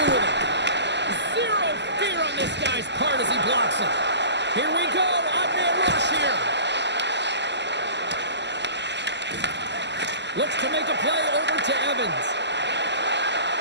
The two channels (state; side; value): late; left; 0.51 ms